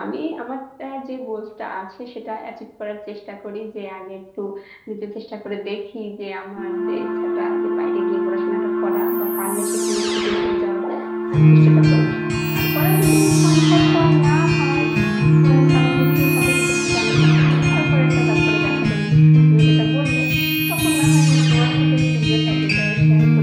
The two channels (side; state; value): both; identical; correlation 1.00